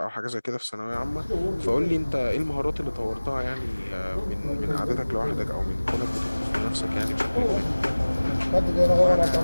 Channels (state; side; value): inverted; both; correlation -1.00